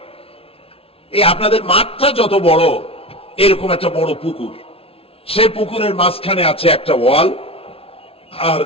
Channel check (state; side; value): late; right; 0.27 ms